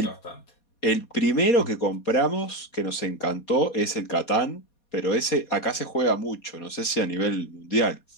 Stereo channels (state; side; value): late; right; 4.2 ms